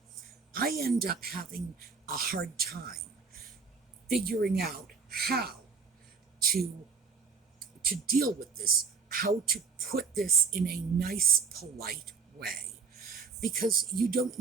I end up having a hard time figuring out how to deal with this, how to put this in a nice, polite way, because you don't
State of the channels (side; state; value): left; quieter; 5.3 dB